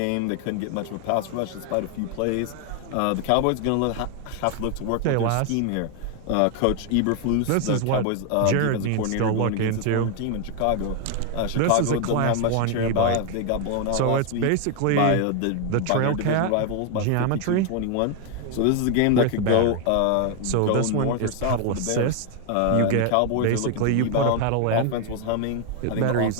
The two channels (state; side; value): different; both; correlation 0.01